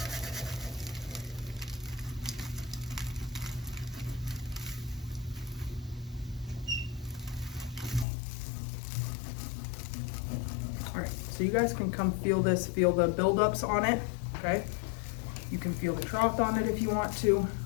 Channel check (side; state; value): right; drops out; at 8.1 s